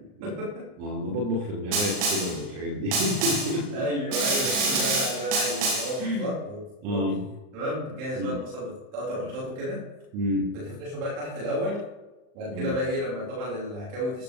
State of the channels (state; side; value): late; left; 39 ms